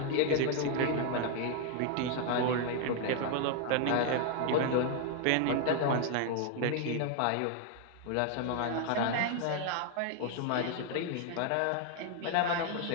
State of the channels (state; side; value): different; both; correlation 0.00